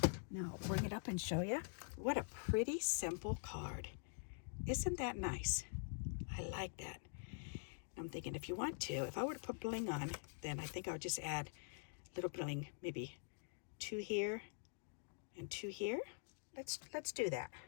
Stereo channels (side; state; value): right; silent; digital silence